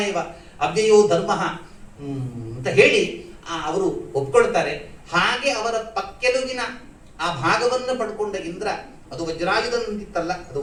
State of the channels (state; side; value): identical; both; correlation 1.00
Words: ಅವ್ಯಯೋ ಧರ್ಮ ಅಂತ ಹೇಳಿ ಅವರು ಒಪ್ಕೊಳ್ತಾರೆ. ಹಾಗೆ ಅವರ ಪಕ್ಕೆಲುವಿನ ಆ ಭಾಗವನ್ನು ಪಡ್ಕೊಂಡ ಇಂದ್ರ, ಅದು ವಜ್ರಾಯುಧ ಅಂತಿತ್ತಲ್ಲ, ಅದು